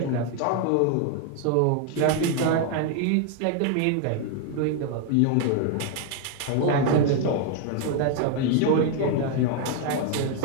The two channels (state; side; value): different; both; correlation 0.01